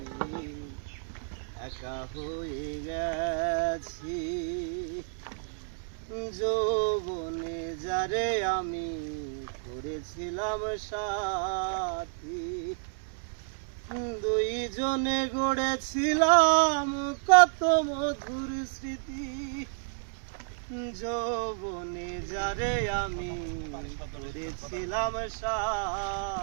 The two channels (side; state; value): left; silent; digital silence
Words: একা হয়ে গেছি। যৌবনে যারে আমি করেছিলাম সাথী, দুইজনে গড়েছিলাম কত মধুর স্মৃতি। যৌবনে যারে আমি করেছিলাম